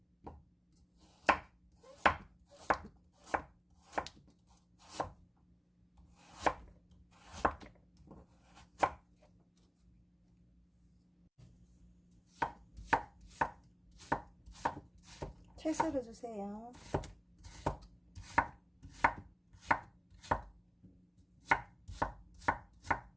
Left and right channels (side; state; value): both; identical; correlation 1.00